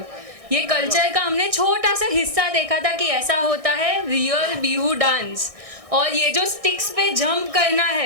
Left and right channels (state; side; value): late; left; 1.6 ms